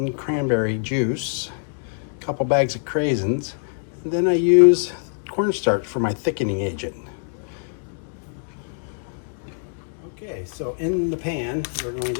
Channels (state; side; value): silent; right; digital silence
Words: cranberry juice, a couple bags of craisins, and then I use cornstarch for my thickening agent. Okay, so in the pan, we're going